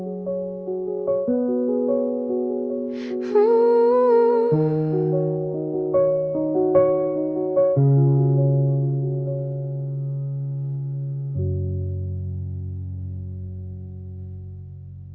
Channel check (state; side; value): identical; both; correlation 1.00